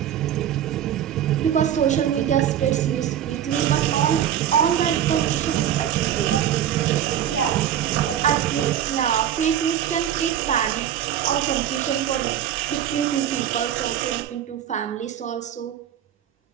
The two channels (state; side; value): quieter; left; 10.4 dB